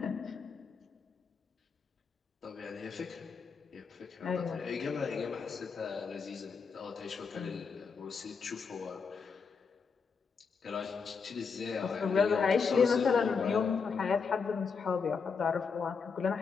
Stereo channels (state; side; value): quieter; right; 5.5 dB